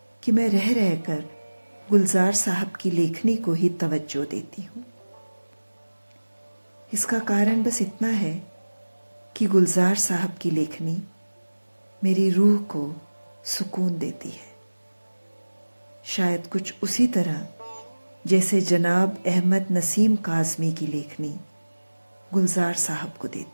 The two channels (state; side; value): inverted; both; correlation -1.00